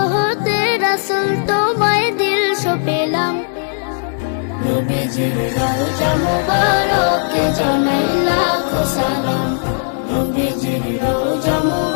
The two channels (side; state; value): right; silent; digital silence